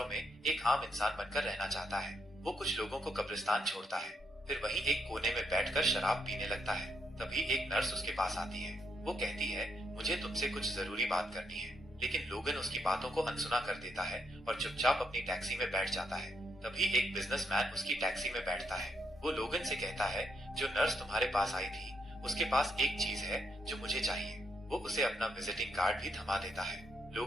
में एक आम इंसान बनकर रहना चाहता है। वो कुछ लोगों को कब्रिस्तान छोड़ता है, फिर वहीं एक कोने में बैठकर शराब पीने लगता है। तभी एक नर्स उसके पास आती है। वो कहती है, मुझे तुमसे कुछ जरूरी बात करनी है। लेकिन लोगन उसकी बातों को अनसुना कर देता है और चुपचाप अपनी टैक्सी में बैठ जाता है। तभी एक बिजनेसमैन उसकी टैक्सी में बैठता है। वो लोगन से कहता है, जो नर्स तुम्हारे पास आई थी, उसके पास एक चीज है जो मुझे चाहिए। वो उसे अपना विजिटिंग कार्ड भी थमा देता है।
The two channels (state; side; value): normal; both; correlation 0.77